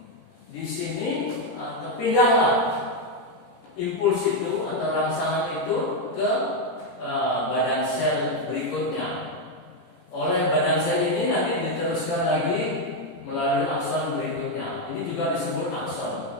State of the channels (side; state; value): right; late; 17 ms